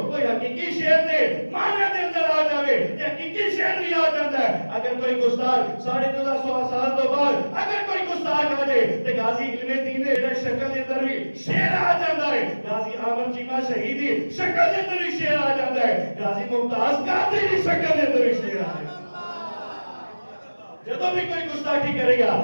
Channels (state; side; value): inverted; both; correlation -1.00